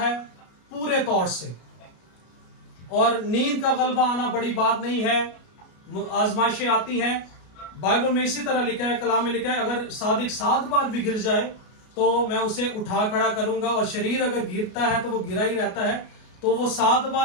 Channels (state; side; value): late; right; 33 ms